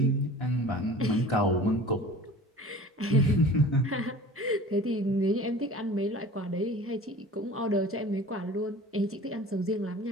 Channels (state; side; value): normal; both; correlation 0.41